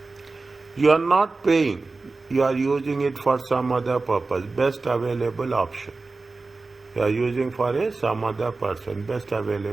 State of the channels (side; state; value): left; quieter; 3.7 dB